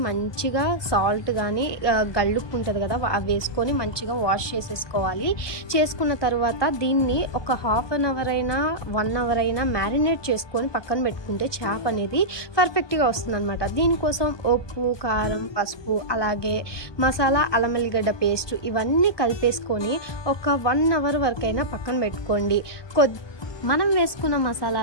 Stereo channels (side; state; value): right; late; 1.2 ms